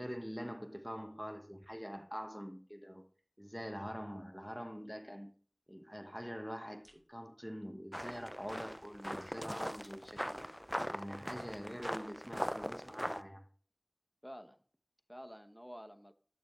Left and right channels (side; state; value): both; identical; correlation 1.00